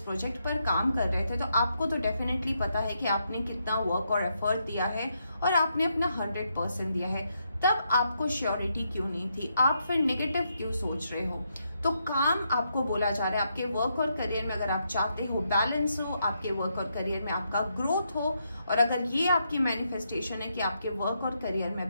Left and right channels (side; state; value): both; inverted; correlation -0.80